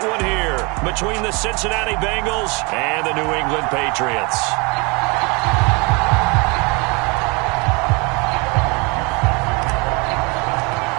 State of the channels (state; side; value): quieter; left; 29.3 dB